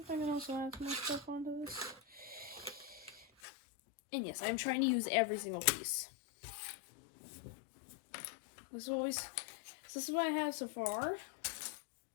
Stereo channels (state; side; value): drops out; right; at 3.2 s